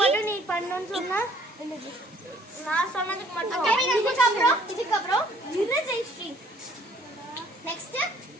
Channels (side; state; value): both; normal; correlation 0.59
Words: நீ பண்ணணும்னு சொன்னா நான் சொன்னதுக்கு மட்டும். இதுக்கப்புறம் ஜெயஸ்ரீ நெக்ஸ்ட்